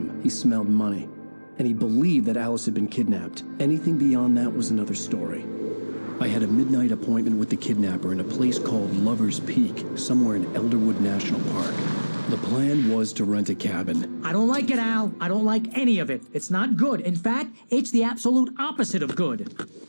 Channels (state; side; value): inverted; both; correlation -1.00